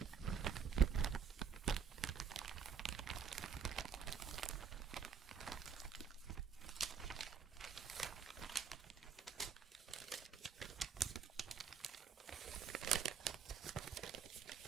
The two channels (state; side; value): quieter; left; 6.7 dB